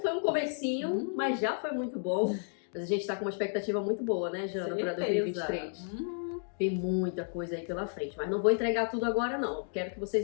um comecinho, mas já foi muito bom. Mas a gente tá com uma expectativa muito boa, né, Jana, para 2023. Tem muita coisa aí pela frente, mas não vou entregar tudo agora, não. Quero que vocês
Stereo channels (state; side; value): silent; right; digital silence